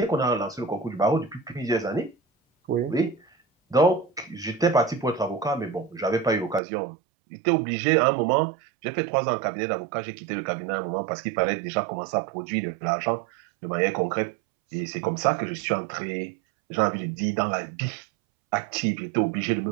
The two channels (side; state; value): left; drops out; at 6.6 s